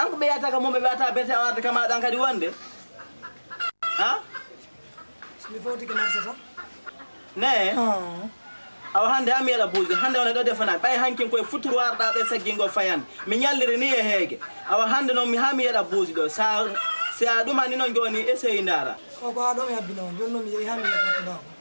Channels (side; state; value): both; inverted; correlation -1.00